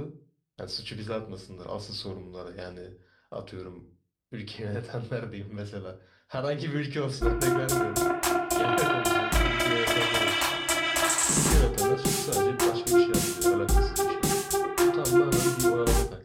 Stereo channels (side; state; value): both; identical; correlation 1.00